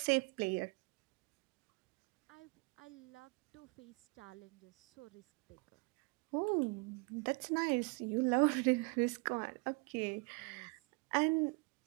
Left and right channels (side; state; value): left; quieter; 30.6 dB